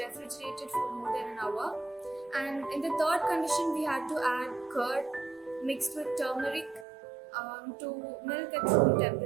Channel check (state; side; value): drops out; left; at 6.9 s